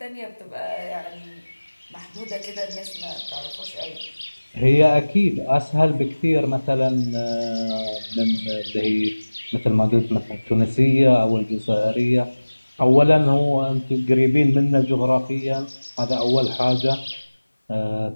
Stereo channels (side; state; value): both; inverted; correlation -1.00